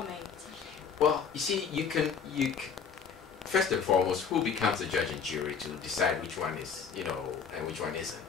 Well, you see, you can first and foremost, who becomes the judge and jury to decide which one is, and which one isn't?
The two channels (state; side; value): quieter; right; 6.3 dB